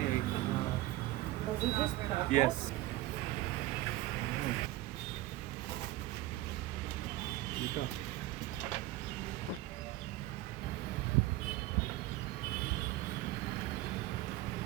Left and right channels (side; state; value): left; quieter; 16.5 dB